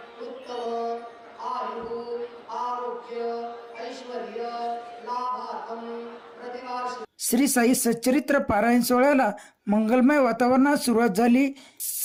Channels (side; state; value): both; identical; correlation 1.00